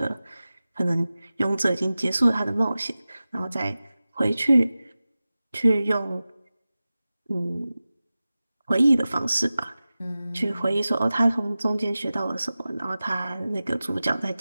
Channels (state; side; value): inverted; both; correlation -0.96